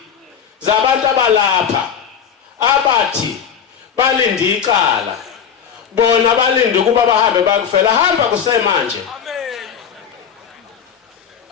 zabantu abalapha abathi balinde icala bona balinde ukuba bahambe bakufela hamba kusemanje. Amen.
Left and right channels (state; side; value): quieter; right; 7.7 dB